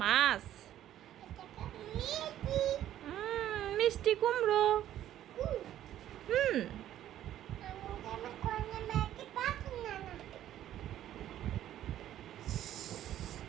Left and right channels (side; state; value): left; quieter; 12.1 dB